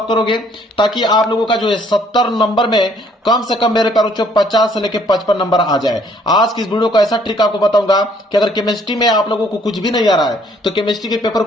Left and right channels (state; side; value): normal; both; correlation 0.63